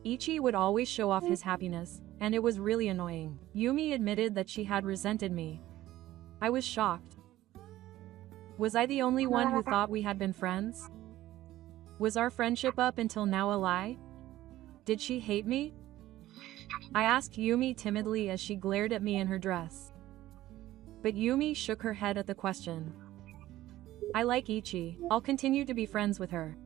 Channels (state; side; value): quieter; left; 15.1 dB